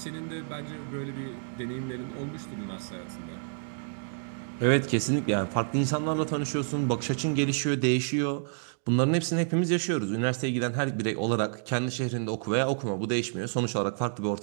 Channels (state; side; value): silent; left; digital silence